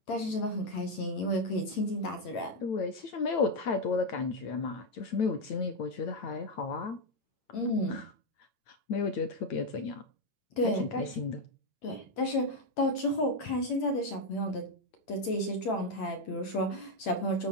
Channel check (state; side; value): late; right; 8.9 ms